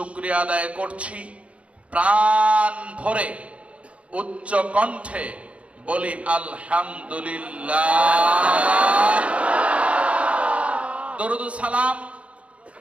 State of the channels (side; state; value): left; late; 0.062 ms